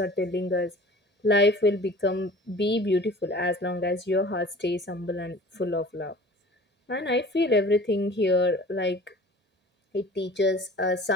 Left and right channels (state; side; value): normal; both; correlation 0.44